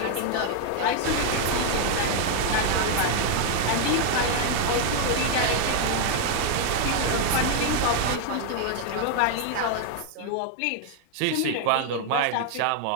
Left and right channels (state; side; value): different; both; correlation 0.00